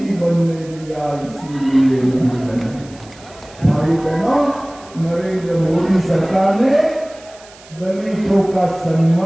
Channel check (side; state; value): right; noise; hiss, 23 dB below the sound